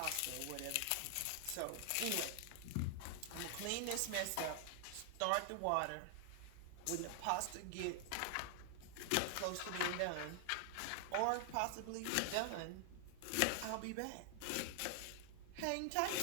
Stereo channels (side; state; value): both; different; correlation 0.00